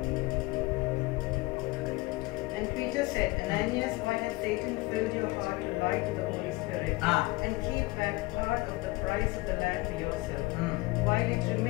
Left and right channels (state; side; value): quieter; right; 22.2 dB